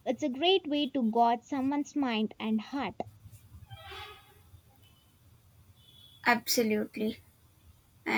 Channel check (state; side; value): identical; both; correlation 1.00